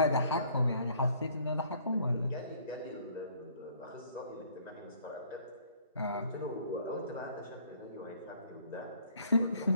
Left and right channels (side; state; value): both; inverted; correlation -0.59